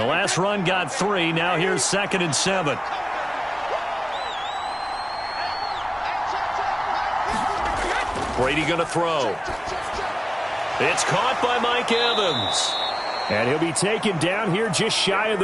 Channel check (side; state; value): both; identical; correlation 1.00